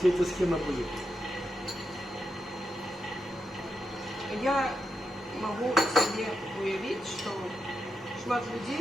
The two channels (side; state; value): both; normal; correlation 0.85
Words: эта схема будет. Я могу себе уявить, что шмат